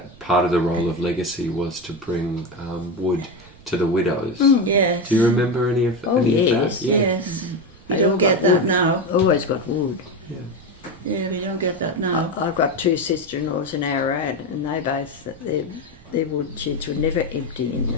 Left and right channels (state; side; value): noise; right; rumble, 24 dB below the sound